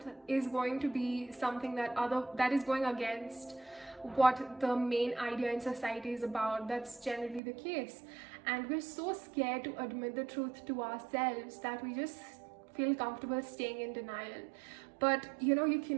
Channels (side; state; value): left; drops out; at 7.4 s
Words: is going to be something that is going against what the main idea in society is about. That's generally the case, and we're so scared to admit the truth to ourselves that we just feel comfortable staying in denial. But you